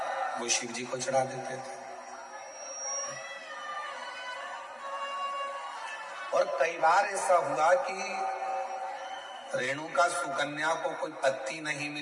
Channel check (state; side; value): identical; both; correlation 1.00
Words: वो शिव जी को चढ़ा देते थे। और कई बार ऐसा हुआ कि रेणुका सुकन्या को कोई पत्ती नहीं